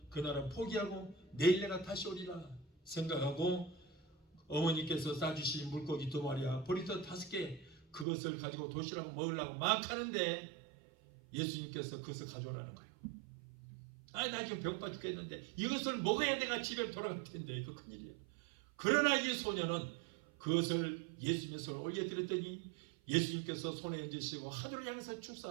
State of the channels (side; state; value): left; drops out; at 8.1 s